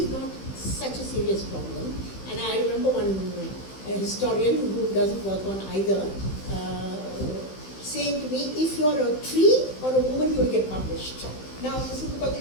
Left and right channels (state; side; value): late; right; 15 ms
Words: not such a serious problem. And I remember one historian who doesn't work on either saying to me, if you're a tree or a woman, you'll get published. Now, this is because